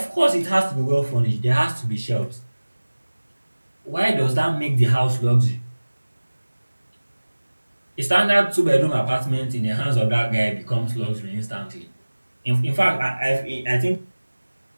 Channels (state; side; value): inverted; both; correlation -1.00